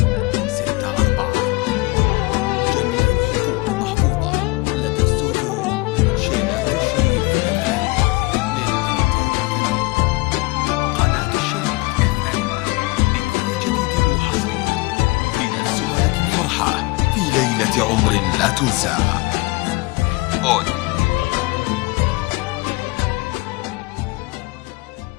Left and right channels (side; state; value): right; quieter; 23.6 dB